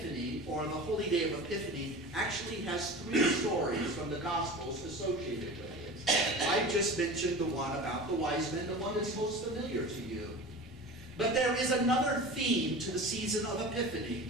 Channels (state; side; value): normal; both; correlation 0.34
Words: or the holy day of Epiphany, actually has 3 stories from the Gospels associated with it. I just mentioned the one about the wise men, the one that's most familiar to you. But there is another theme to the season of Epiphany,